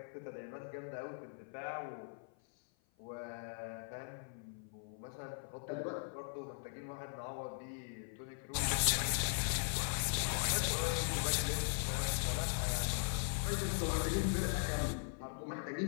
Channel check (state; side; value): silent; right; 51 dB below the other